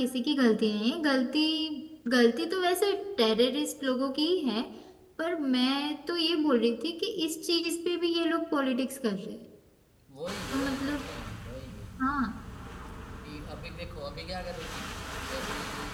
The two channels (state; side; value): identical; both; correlation 1.00